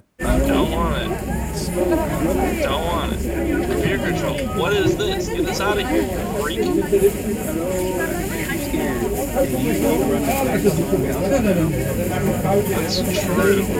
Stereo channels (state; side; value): identical; both; correlation 1.00